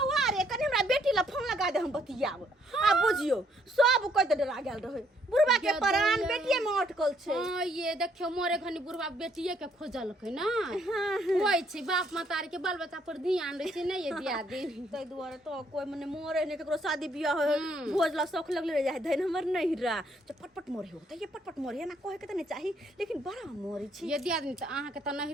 रे कनी हमरा बेटी ला फोन लगा दे हम बतियाब आ बुझियो सब कोइ त डरा गेल रहे बुढ़वा के प्राण बेटिए में अटकल छै। हां ये देखियो मोरे घनी बुढ़वा बेटिए के खोजलकै ना होय छै बाप मातारी के बाल बच्चा पर ध्यान दै छै नहीं ये दिया दे तै दुआरे तो कोई मने मोरे ने केकरो शादी बियाह हो भोज ला शौक लगले रह जाय धैन हमर नहीं रा पटपट मोरे हो त ये पटपट मोरे ना कहे के त नहीं चाही लेकिन बड़ा मोरे छी ये दिया दिन त अहाँ के त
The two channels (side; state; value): both; normal; correlation 0.69